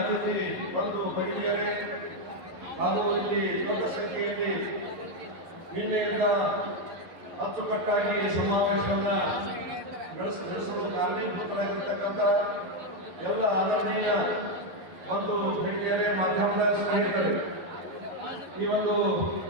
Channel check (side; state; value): left; late; 11 ms